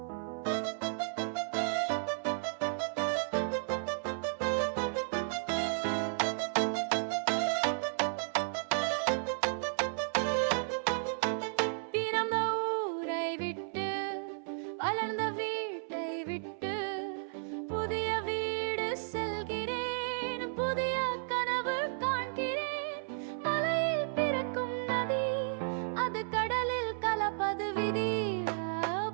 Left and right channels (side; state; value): left; silent; 55 dB below the other